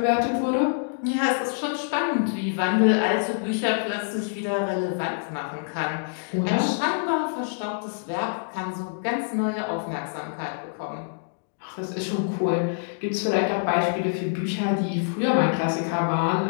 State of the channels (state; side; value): silent; right; digital silence